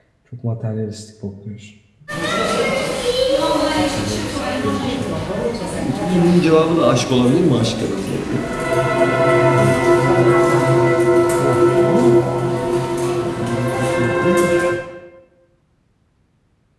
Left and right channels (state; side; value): identical; both; correlation 1.00